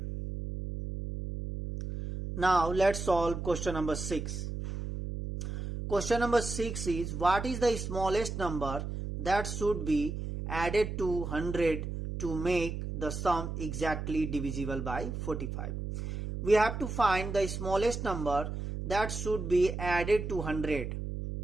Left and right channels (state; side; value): noise; right; hum, 5 dB below the sound